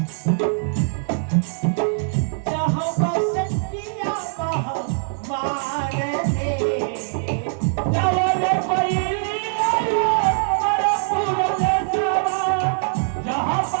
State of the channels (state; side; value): silent; left; digital silence